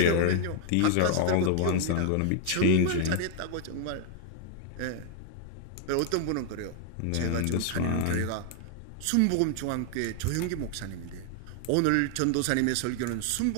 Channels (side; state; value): both; different; correlation 0.00